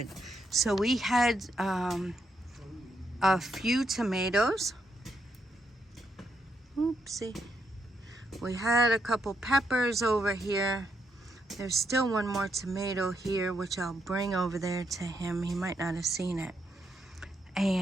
So we had a few tomatoes. Oopsie. We had a couple peppers over here. There's still one more tomato here, which I'll bring over there to him. He might not have seen it.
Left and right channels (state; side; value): normal; both; correlation 0.79